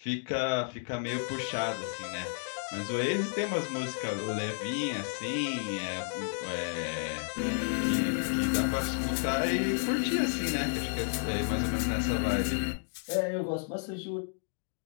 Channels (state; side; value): silent; right; digital silence